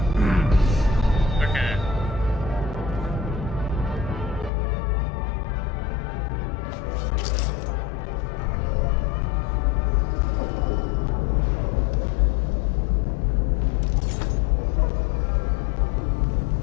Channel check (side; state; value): right; drops out; at 4.5 s